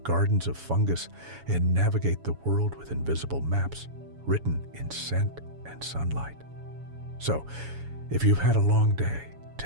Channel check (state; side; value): late; left; 7.1 ms